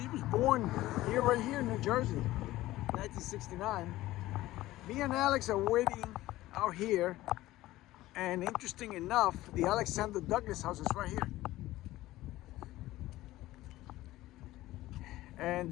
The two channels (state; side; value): quieter; right; 16.6 dB